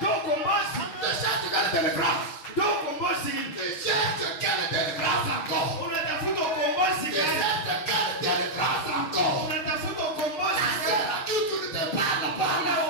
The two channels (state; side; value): late; right; 6.4 ms